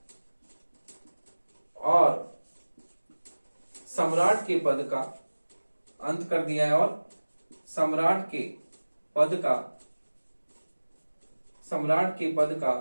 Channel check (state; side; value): inverted; both; correlation -1.00